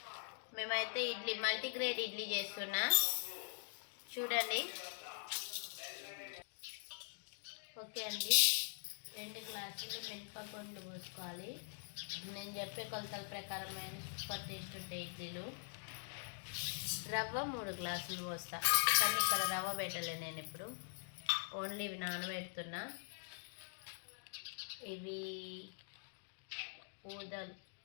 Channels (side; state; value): right; silent; digital silence